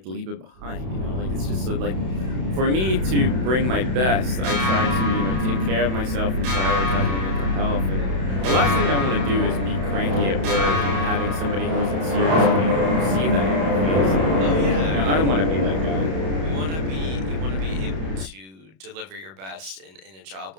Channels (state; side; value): late; left; 32 ms